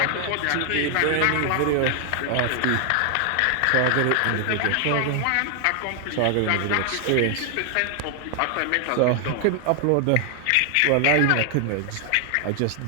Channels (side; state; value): both; different; correlation 0.00